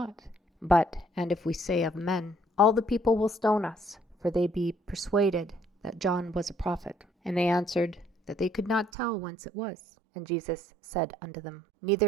But, and if we say of men, all the people will stone us, for they be persuaded that John was a prophet. And they answered, that they could not tell whence it was. And Jesus said unto them,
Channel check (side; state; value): left; drops out; at 8.9 s